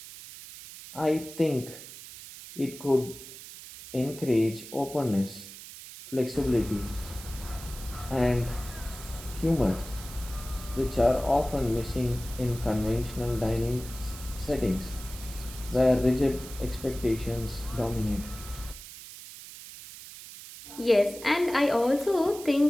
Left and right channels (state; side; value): noise; right; hiss, 14 dB below the sound